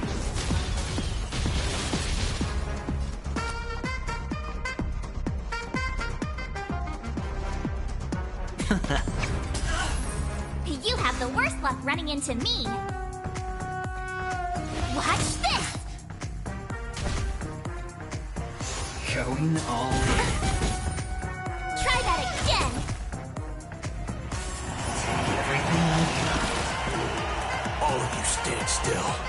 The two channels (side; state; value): both; identical; correlation 1.00